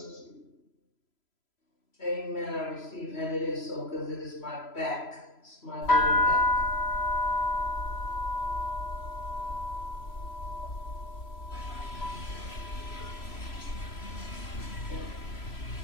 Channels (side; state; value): right; late; 3.0 ms